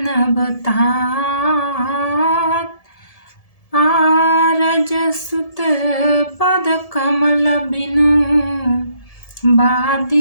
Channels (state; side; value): late; right; 1.7 ms